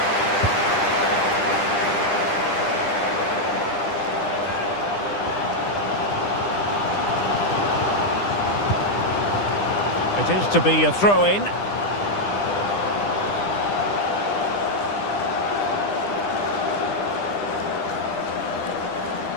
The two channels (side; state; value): right; late; 10 ms